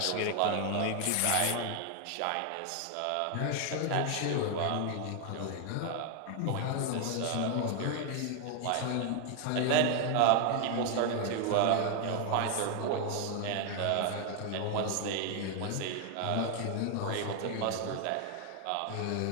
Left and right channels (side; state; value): both; different; correlation 0.00